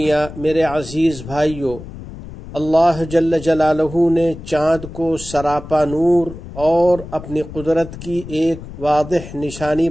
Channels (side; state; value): left; noise; rumble, 13 dB below the sound